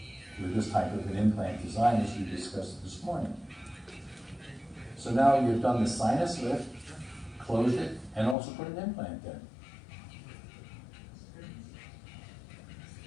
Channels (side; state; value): right; drops out; at 8.3 s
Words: with this type of an implant design as we discussed this morning. So now you've done the sinus lift, closed it, and also put an implant in.